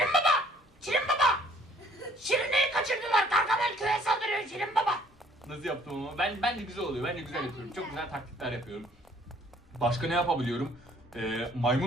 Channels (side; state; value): both; normal; correlation 0.59